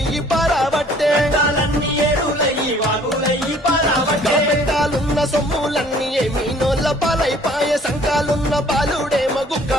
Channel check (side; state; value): both; normal; correlation 0.56